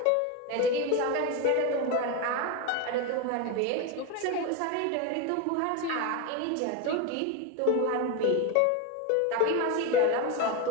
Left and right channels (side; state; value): both; different; correlation 0.03